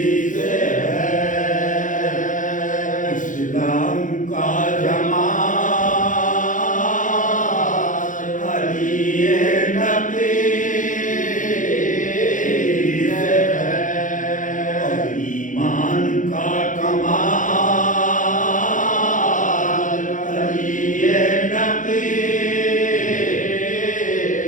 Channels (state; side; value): late; right; 0.38 ms